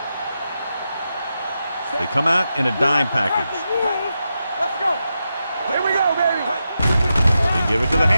They come out in a dime package. Let's go. Here we go, baby. They give it to the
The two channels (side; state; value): both; inverted; correlation -0.88